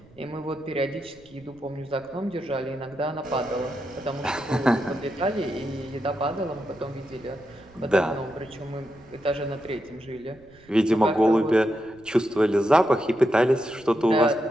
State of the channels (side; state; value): right; noise; rumble, 26 dB below the sound